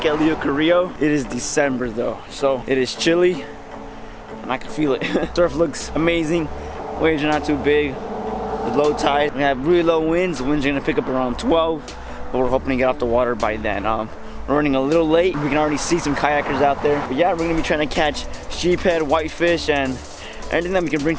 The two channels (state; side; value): identical; both; correlation 1.00